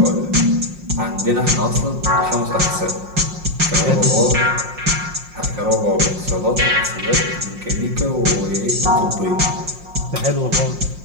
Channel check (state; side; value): late; left; 5.6 ms